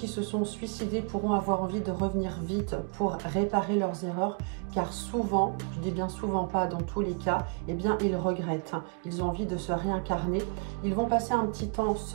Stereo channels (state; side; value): quieter; left; 39.6 dB